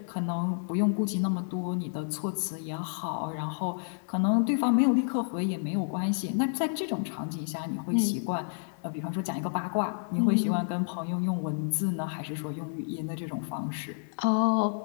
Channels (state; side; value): silent; right; 58 dB below the other